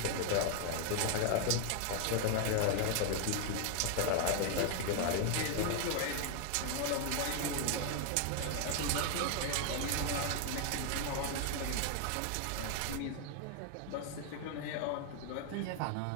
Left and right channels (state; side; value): different; both; correlation 0.01